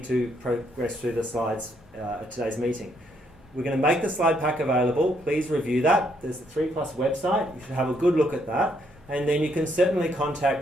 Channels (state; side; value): normal; both; correlation 0.72